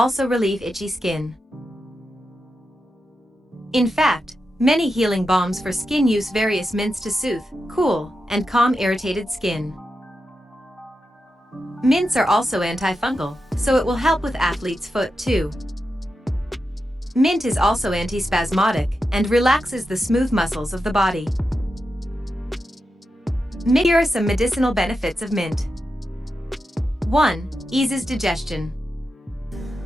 relieve itchy skin. In fact, many healing balms for skin use various mints to soothe, cool, and calm irritated skin. Mints are also antifungal, so it will help with athlete's foot too. Mint is also antispasmodic and relaxes the smooth muscles of the body. Here are some medicinal benefits of mint. 1. Eases digestion.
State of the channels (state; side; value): normal; both; correlation 0.89